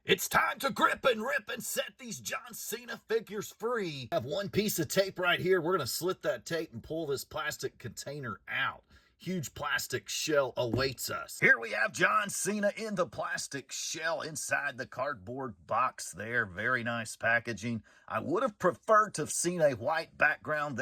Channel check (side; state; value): both; identical; correlation 1.00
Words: It's time to grip and rip and set these John Cena figures free. I have one piece of tape right here. We're going to slit that tape and pull this plastic container out. Huge plastic shell awaits us. Here we have John Cena in the plastic shell inside the cardboard box there. Very nice packaging. I would have preferred to have seen a white background